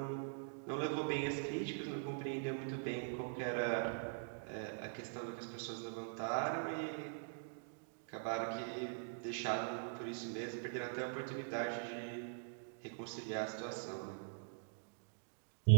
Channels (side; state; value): left; silent; digital silence